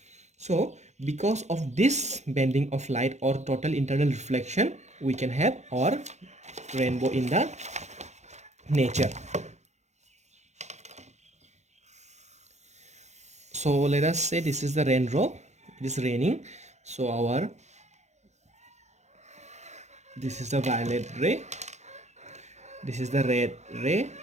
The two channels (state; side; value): late; left; 0.33 ms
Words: So because of this bending of light or total internal reflection, we can have our rainbow in the nature. So let us say this is the raindrop, it is raining. So this is the violet ray, this is the red ray,